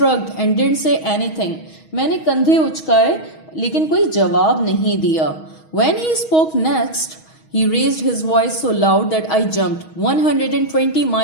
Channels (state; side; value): late; right; 6.3 ms